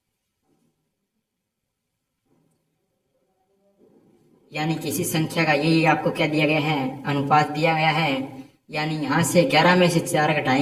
यानी किसी संख्या का यही आपको क्या दिया गया है, अनुपात दिया गया है। यानी यहाँ से 11 में से 4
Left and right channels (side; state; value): both; identical; correlation 1.00